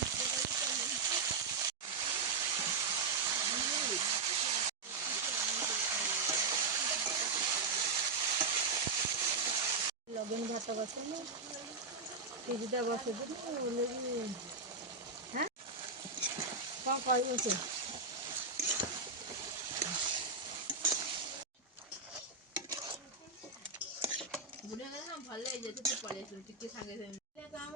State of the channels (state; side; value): quieter; left; 4.3 dB